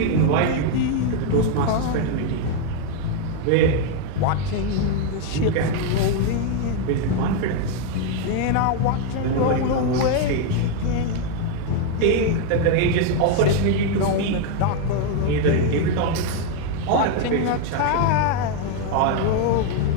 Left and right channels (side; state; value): both; different; correlation 0.01